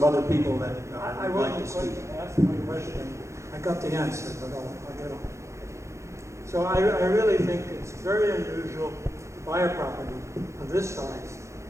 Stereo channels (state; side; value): late; left; 0.14 ms